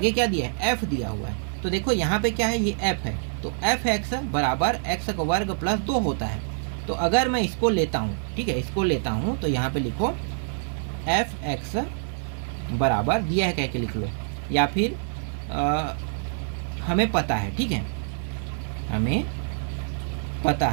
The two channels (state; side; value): silent; left; 61 dB below the other